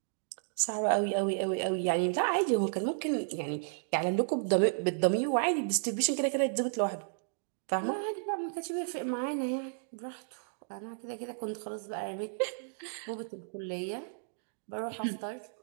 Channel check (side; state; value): left; silent; digital silence